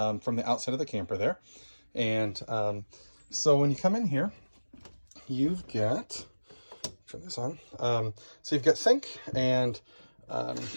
the outside of the camper there. And so when you come in here, you've got, turn this on, so you've got sink and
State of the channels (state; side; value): inverted; both; correlation -1.00